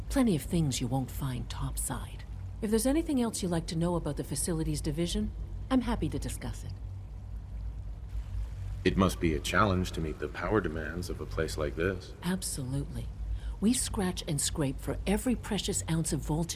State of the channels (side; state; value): both; identical; correlation 1.00